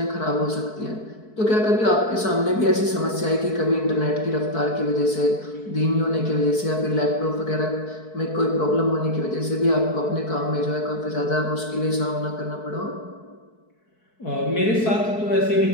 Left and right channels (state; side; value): late; right; 4.6 ms